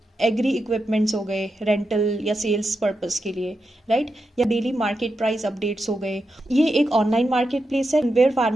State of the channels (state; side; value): normal; both; correlation 0.87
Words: एग्री इक्विपमेंट्स हो गए रेंटल या सेल्स पर्पस के लिए, राइट, या डेली मार्केट प्राइस अपडेट्स हो गए। ये एक ऑनलाइन मार्केट प्लेस है where